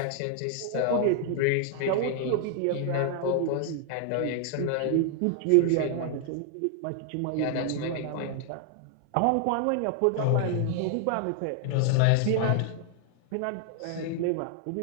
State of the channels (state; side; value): different; both; correlation 0.00